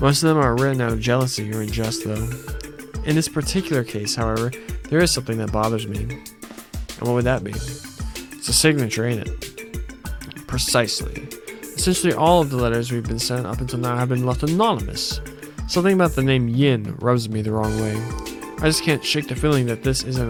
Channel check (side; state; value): both; identical; correlation 1.00